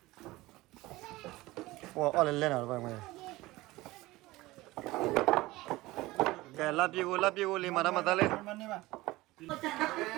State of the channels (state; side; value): quieter; left; 19.3 dB